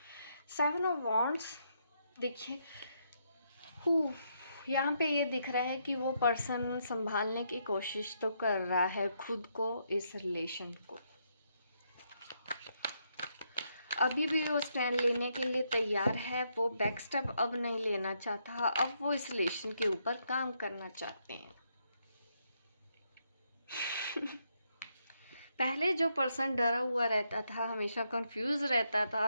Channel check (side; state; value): both; inverted; correlation -0.77